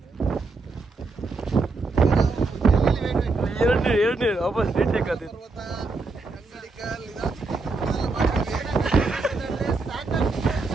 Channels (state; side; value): quieter; left; 3.7 dB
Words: ಎರಡನೇ ವಾಪಸ್ ರೀಟೇಕ್ ಆದಿತ್ತು.